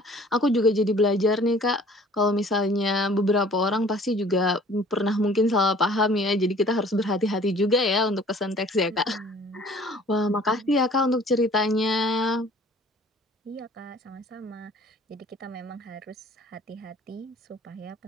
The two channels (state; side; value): normal; both; correlation 0.51